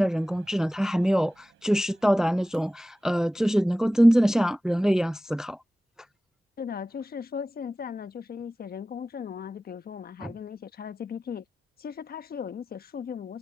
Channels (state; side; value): normal; both; correlation 0.96